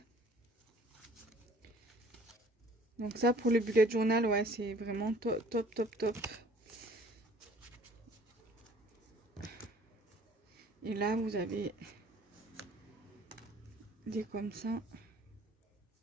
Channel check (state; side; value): normal; both; correlation 0.53